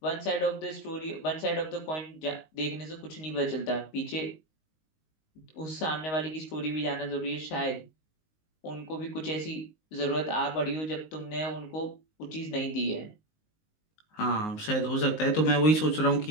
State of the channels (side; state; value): right; late; 19 ms